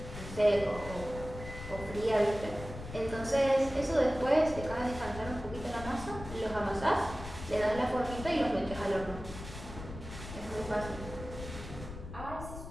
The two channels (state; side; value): noise; left; rumble, 11 dB below the sound